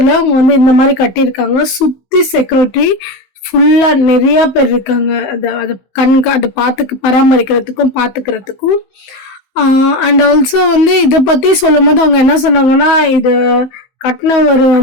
அவங்க வந்து இந்த மாதிரி கட்டியிருக்காங்க. சுத்தி செக்யூரிட்டி ஃபுல்லா நிறைய பேர் இருக்காங்க. அதை பராமரிக்கிறதுக்கும் பாத்துக்கிறதுக்கும். அண்ட் ஆல்சோ வந்து இதை பத்தி சொல்லும் போது அவங்க என்ன சொன்னாங்கன்னா, இது கட்டினவர்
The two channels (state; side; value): late; right; 15 ms